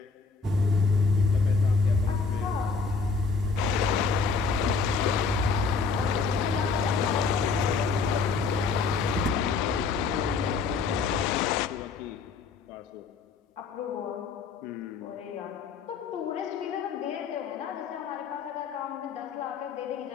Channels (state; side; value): quieter; right; 4.9 dB